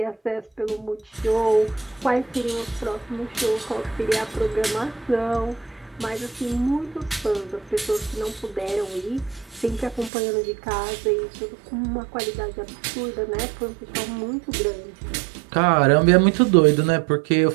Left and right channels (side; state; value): left; drops out; at 10.1 s